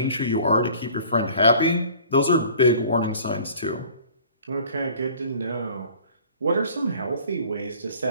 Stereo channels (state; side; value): inverted; both; correlation -0.49